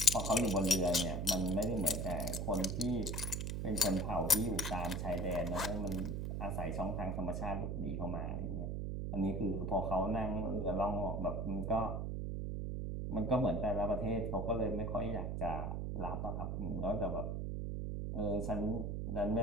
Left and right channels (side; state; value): right; noise; hum, 2 dB below the sound